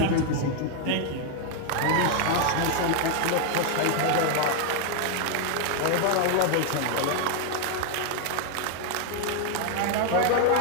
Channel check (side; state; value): both; different; correlation 0.00